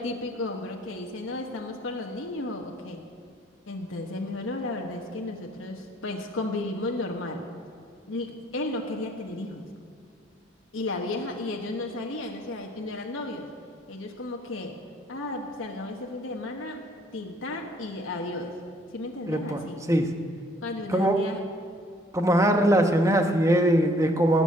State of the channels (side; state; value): both; normal; correlation 0.60